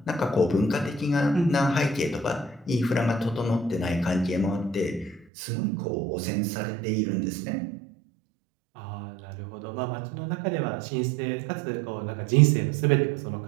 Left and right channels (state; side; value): drops out; left; at 5.2 s